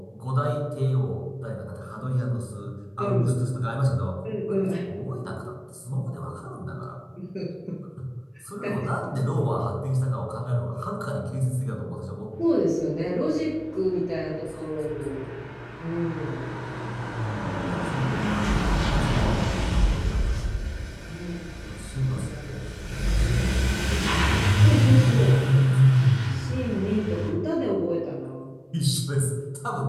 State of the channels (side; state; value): both; identical; correlation 1.00